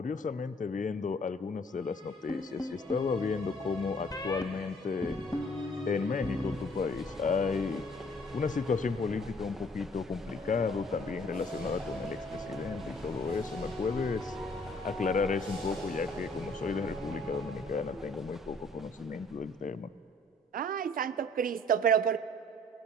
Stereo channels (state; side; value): normal; both; correlation 0.59